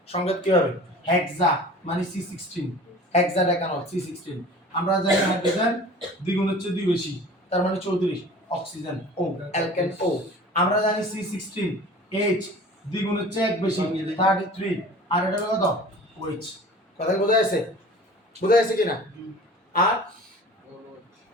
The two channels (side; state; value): both; normal; correlation 0.42